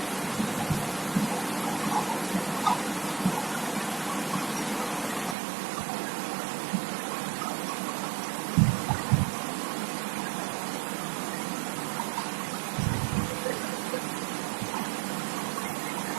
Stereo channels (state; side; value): drops out; left; at 5.4 s